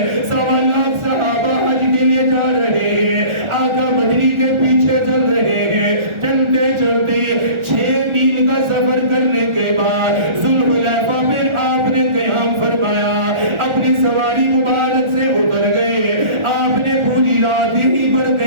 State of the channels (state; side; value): late; left; 1.4 ms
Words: 1.25 لاکھ صحابہ حج کے لیے جا رہے ہیں، آقا مدنی کے پیچھے چل رہے ہیں، چلتے چلتے 6 میل کا سفر کرنے کے بعد ذوالحلیفہ پہ آپ نے قیام فرمایا، اپنی سواری مبارک سے اتر گئے، آپ نے پوری رات ہی پر